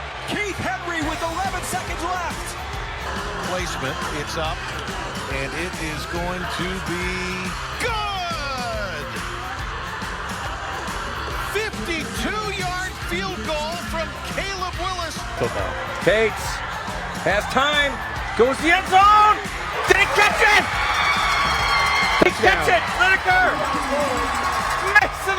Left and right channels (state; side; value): identical; both; correlation 1.00